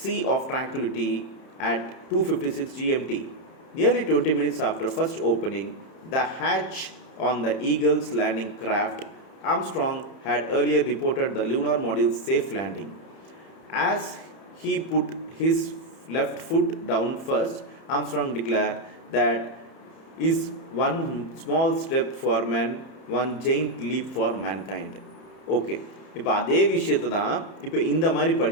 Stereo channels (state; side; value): late; right; 31 ms